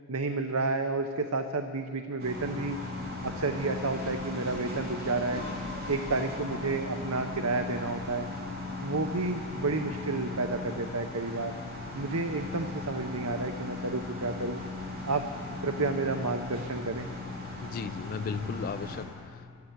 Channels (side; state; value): both; normal; correlation -0.08